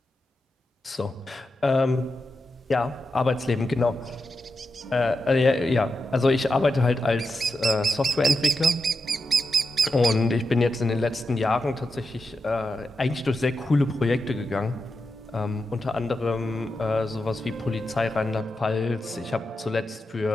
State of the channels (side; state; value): both; normal; correlation 0.88